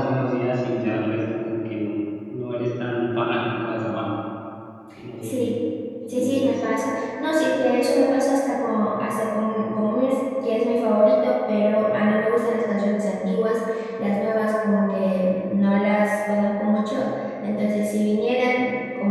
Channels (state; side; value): identical; both; correlation 1.00